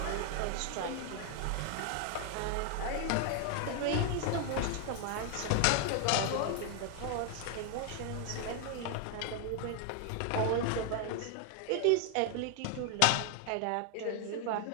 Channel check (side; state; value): both; different; correlation 0.00